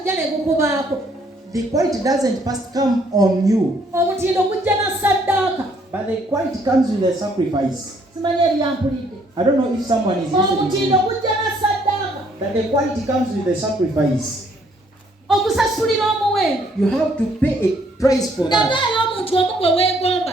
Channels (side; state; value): both; normal; correlation 0.66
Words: The quality doesn't first come on you, but the quality comes with the sacrifice. I don't know if someone is listening. That the quality comes with the sacrifice. You have to pay a price for that.